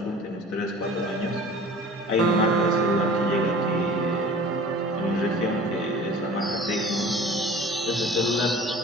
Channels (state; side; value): normal; both; correlation 0.44